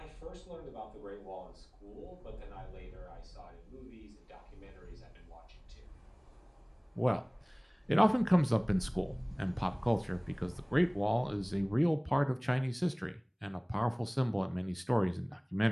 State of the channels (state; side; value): identical; both; correlation 1.00